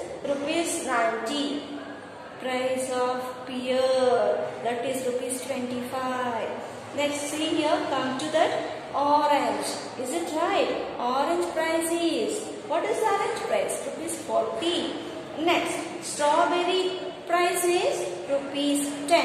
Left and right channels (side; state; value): both; identical; correlation 1.00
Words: rupees 90. Price of pear, that is rupees 25. Next, see here, come to that orange. Is it right? Orange price is, what is the orange price? Rupees 40. Next, strawberry price is rupees